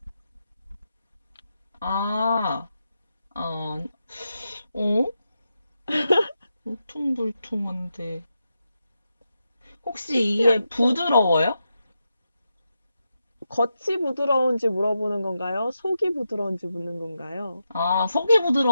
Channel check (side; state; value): both; inverted; correlation -0.87